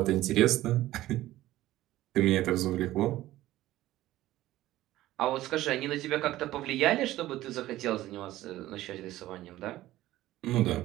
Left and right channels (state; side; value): quieter; left; 15.5 dB